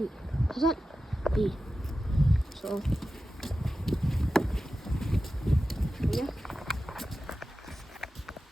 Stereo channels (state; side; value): normal; both; correlation 0.93